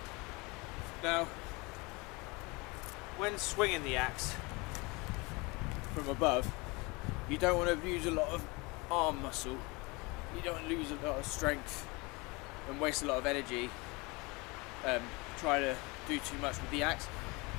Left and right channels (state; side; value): quieter; right; 26.2 dB